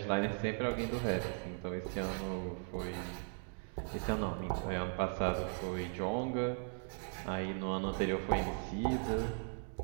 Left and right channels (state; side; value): silent; left; 52 dB below the other